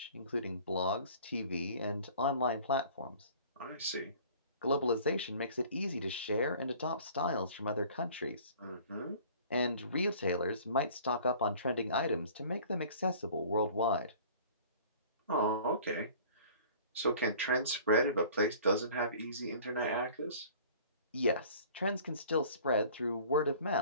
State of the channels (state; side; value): inverted; both; correlation -0.48